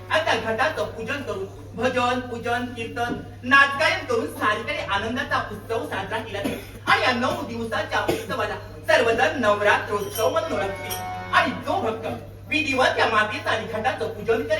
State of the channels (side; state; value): both; identical; correlation 1.00